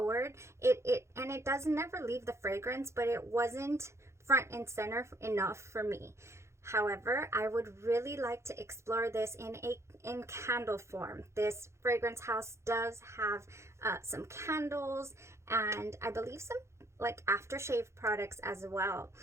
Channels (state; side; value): late; left; 0.13 ms